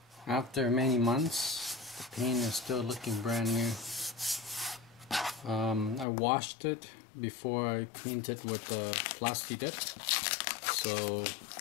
after many months, the paint is still looking brand new. I washed it before I painted with the Plasti dip, so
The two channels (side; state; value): right; drops out; at 6.1 s